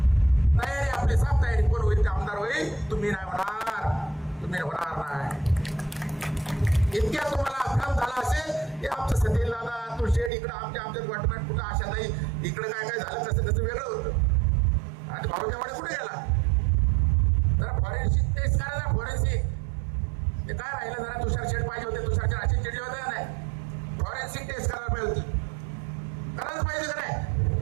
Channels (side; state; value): left; drops out; at 10.3 s